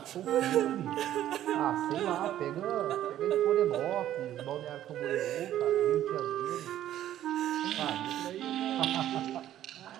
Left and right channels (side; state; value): left; quieter; 12.2 dB